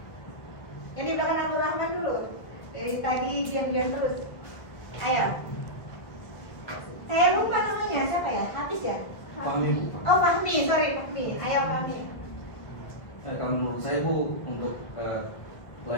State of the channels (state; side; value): late; right; 1.8 ms